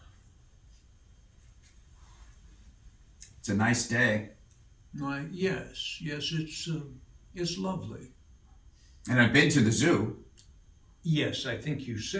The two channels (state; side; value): identical; both; correlation 1.00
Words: It's a nice day. Why, yes, it's lovely. And I've been to the zoo. Yes, I think you